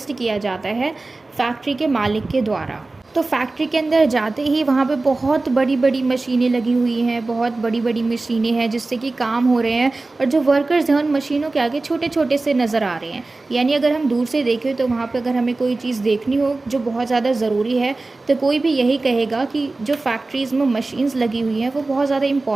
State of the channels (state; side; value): quieter; left; 3.3 dB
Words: किया जाता है फैक्ट्री के मालिक के द्वारा। तो फैक्ट्री के अंदर जाते ही वहाँ पे बहुत बड़ी बड़ी मशीनें लगी हुई हैं, बहुत बड़ी बड़ी मशीनें हैं जिससे कि काम हो रहे हैं, और जो वर्कर्स हैं उन मशीनों के आगे छोटे छोटे से नज़र आ रहे हैं। यानी अगर हम दूर से देखें तो वहाँ पे अगर हमें कोई चीज़ देखनी हो जो बहुत ज़्यादा ज़रूरी है तो कोई भी यही कहेगा कि जो फैक्ट्रीज़ में मशीन्स लगी हुई हैं वो बहुत ज़्यादा